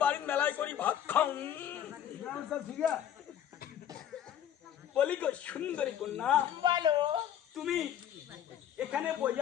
বাড়ির মেলায় করি ভাত খাও বলি গো সুন্দরী কন্যা বলো তুমি এখানে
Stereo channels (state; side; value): quieter; right; 10.2 dB